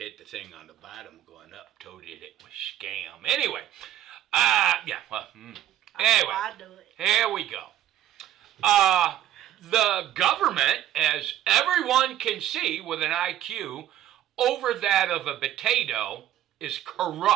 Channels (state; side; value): quieter; left; 12.3 dB